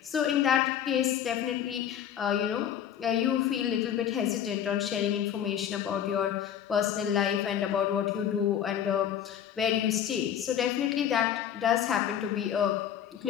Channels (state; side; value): quieter; right; 9.6 dB